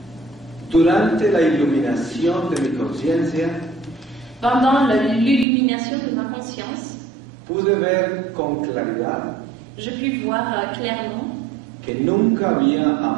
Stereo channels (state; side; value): drops out; left; at 5.5 s